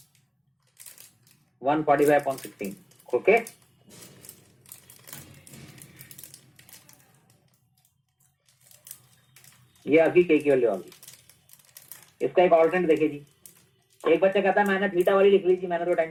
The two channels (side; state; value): both; identical; correlation 1.00